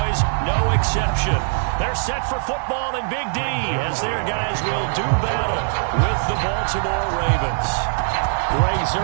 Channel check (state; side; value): silent; left; digital silence